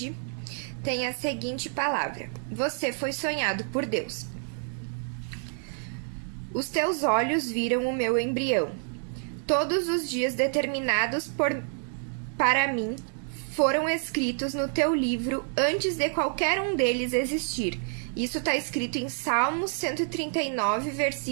tem a seguinte palavra: Você foi sonhado por Deus. Os teus olhos viram o meu embrião. Todos os dias determinados para mim foram escritos no teu livro antes de qualquer um deles existir. Isso está escrito em Salmos 139,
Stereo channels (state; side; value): silent; left; 59 dB below the other